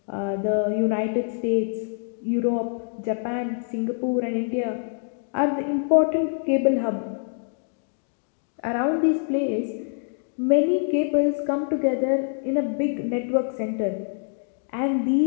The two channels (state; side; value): silent; right; digital silence